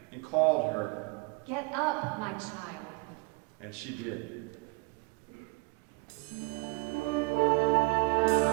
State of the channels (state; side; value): quieter; left; 27.2 dB